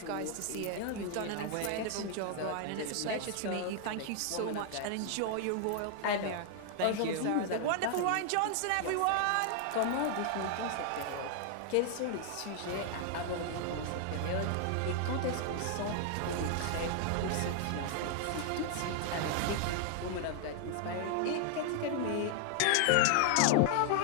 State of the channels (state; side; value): different; both; correlation 0.00